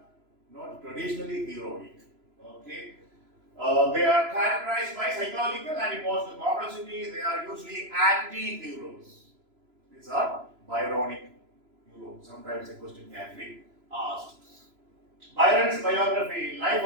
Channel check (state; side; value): late; left; 3.0 ms